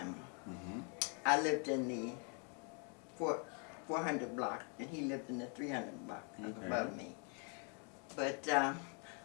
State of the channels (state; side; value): quieter; right; 38.0 dB